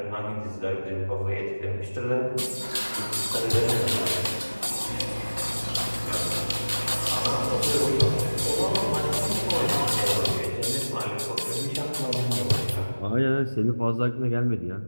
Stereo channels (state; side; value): inverted; both; correlation -1.00